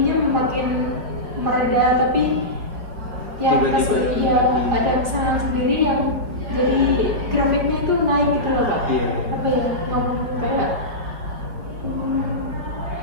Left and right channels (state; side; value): late; left; 4.7 ms